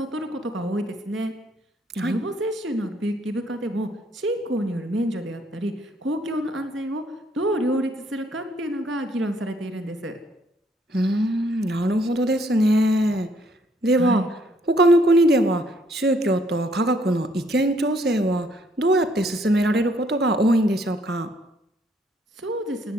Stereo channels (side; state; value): both; normal; correlation 0.67